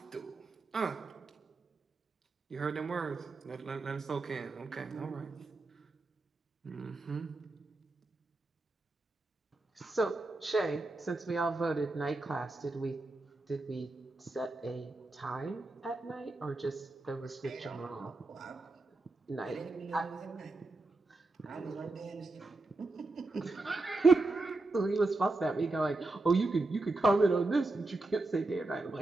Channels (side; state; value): left; quieter; 3.1 dB